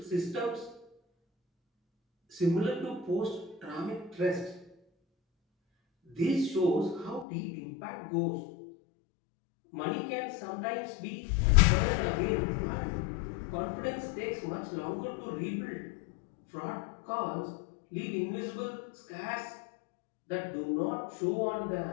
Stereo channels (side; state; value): right; drops out; at 7.2 s